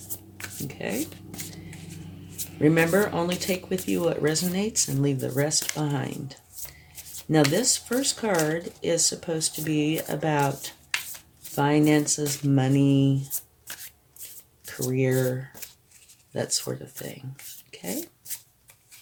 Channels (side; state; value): both; identical; correlation 1.00